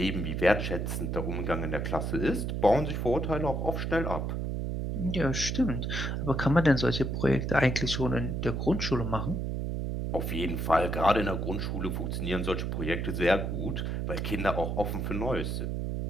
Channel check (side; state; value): right; noise; hum, 1 dB below the sound